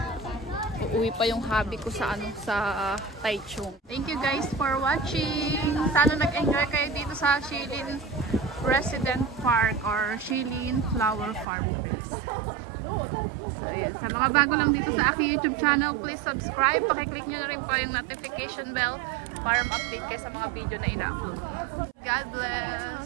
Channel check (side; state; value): left; drops out; at 11.5 s